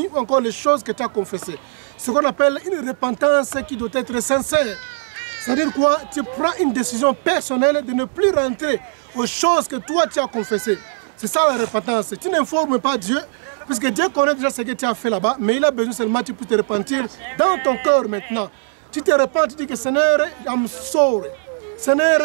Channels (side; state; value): left; silent; digital silence